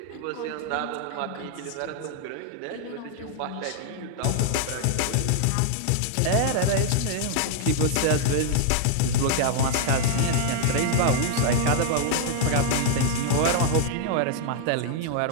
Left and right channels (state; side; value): different; both; correlation -0.01